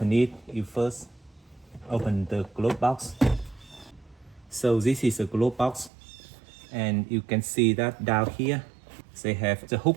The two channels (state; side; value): drops out; left; at 5.9 s